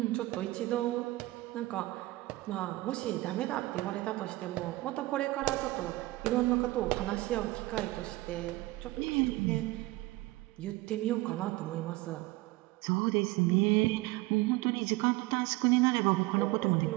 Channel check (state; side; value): quieter; left; 19.6 dB